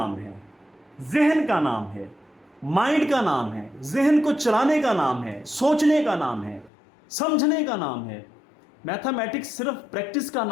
है, जहन का नाम है, माइंड का नाम है, जहन को चलाने का नाम है, सोचने का नाम है, समझने का नाम है, मैथमेटिक्स सिर्फ प्रैक्टिस का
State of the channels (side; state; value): right; drops out; at 6.7 s